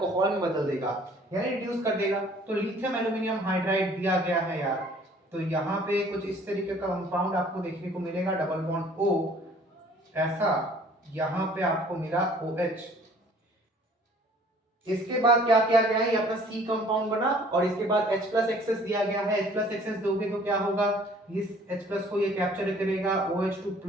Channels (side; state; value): both; normal; correlation 0.55